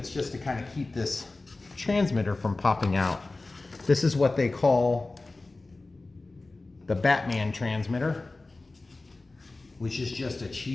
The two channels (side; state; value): right; quieter; 3.3 dB